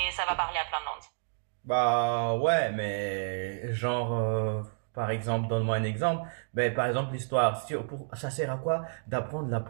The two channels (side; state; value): left; silent; digital silence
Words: ça va parler à plein de monde. Bah ouais, mais genre, par exemple, donne-moi un exemple. Ben, par exemple, l'histoire, ça sert à quoi d'apprendre la